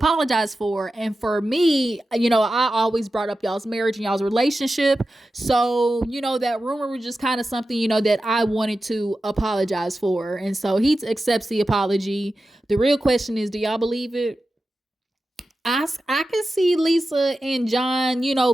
for. And for me, I always brought up y'all's marriage and y'all's relationship. So, that rumor was just kind of something, that I wanted to apologize for. And so he accepts the apology. The real question is, do y'all believe it? I can see Lisa and John,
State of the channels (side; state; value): both; normal; correlation 0.92